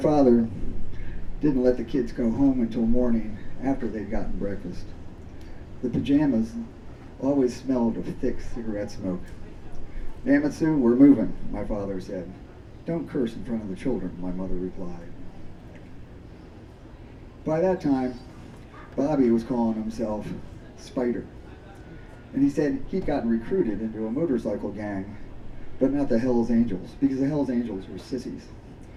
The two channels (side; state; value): both; identical; correlation 1.00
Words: didn't let the kids go home until morning after they'd gotten breakfast. The pajamas always smelled of thick cigarette smoke. "Damn it, Sue, we're moving," my father said. "Don't curse in front of the children," my mother replied. By that time, Bobby was calling himself Spider. And he said he'd gotten recruited into a motorcycle gang, but not the Hells Angels, because the Hells Angels were sissies.